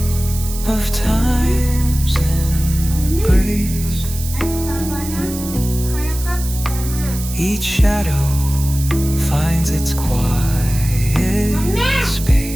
of time's embrace. Each shadow finds its quiet space.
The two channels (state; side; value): noise; right; hiss, 10 dB below the sound